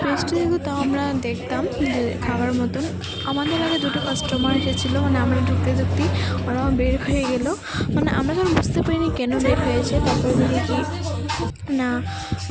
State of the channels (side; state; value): both; identical; correlation 1.00